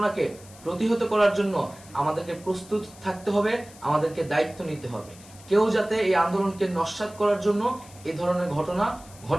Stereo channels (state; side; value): noise; left; hiss, 21 dB below the sound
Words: প্রতিহত করার জন্য আমাদেরকে প্রস্তুত থাকতে হবে, আমাদেরকে দায়িত্ব নিতে হবে। কেউ যাতে এই আন্দোলনকে নস্যাৎ করার জন্য এই ধরনের ঘটনা